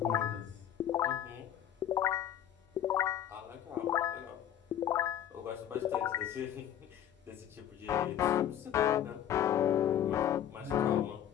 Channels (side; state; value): right; quieter; 10.6 dB